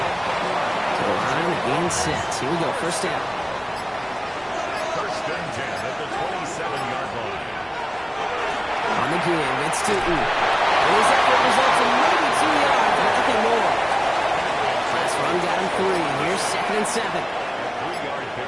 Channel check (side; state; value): both; identical; correlation 1.00